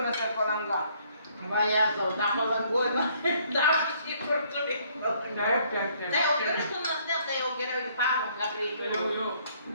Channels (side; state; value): both; inverted; correlation -0.64